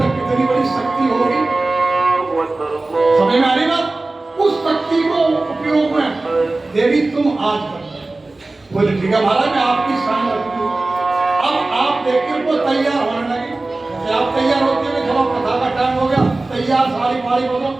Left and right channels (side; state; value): left; quieter; 3.1 dB